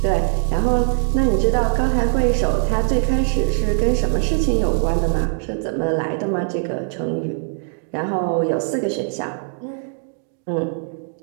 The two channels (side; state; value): left; silent; 65 dB below the other